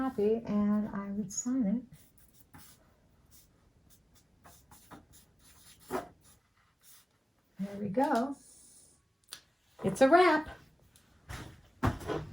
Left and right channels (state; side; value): normal; both; correlation 0.97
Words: and I would sign it. There we go. It's a wrap.